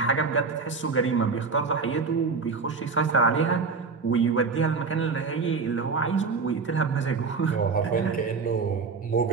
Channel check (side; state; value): left; quieter; 4.8 dB